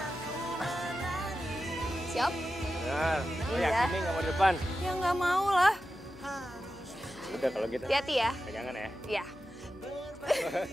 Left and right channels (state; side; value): noise; left; hum, 24 dB below the sound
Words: Siap? Nah, lo Iya. yakin nih nggak mau di depan? Ya nggak mau lah. Udah kalau gitu. Hati-hati ya. Pegangan ya. Iya.